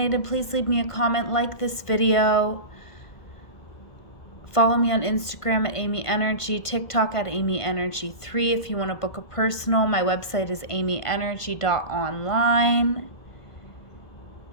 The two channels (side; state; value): right; late; 1.5 ms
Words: please leave me a comment, like this video. Follow me on Instagram at amyenergy, TikTok at amyenergy3. If you want to book a personal, my website is amyenergy.online.